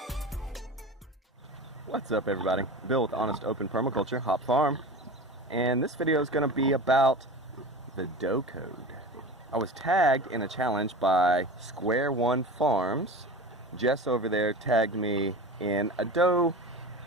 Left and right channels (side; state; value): both; normal; correlation 0.32